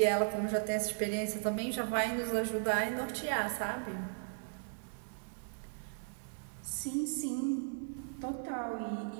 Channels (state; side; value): silent; left; digital silence